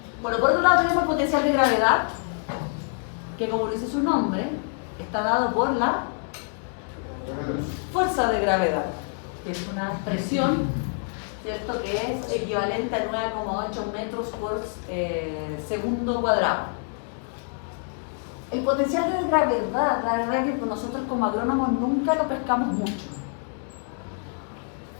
Bueno, por otro lado tenemos el potencial de gravedad, que como dice su nombre, está dado por la fuerza de gravedad, que es una expresión, ¿cierto? Que es equivalente a 9,8 metros por segundo cuadrado. El potencial de gravedad, la verdad es que nosotros como agrónomos nunca lo pescamos mucho.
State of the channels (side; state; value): right; silent; 55 dB below the other